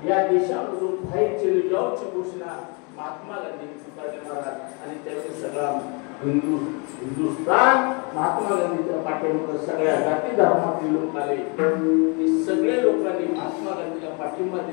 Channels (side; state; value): right; quieter; 33.2 dB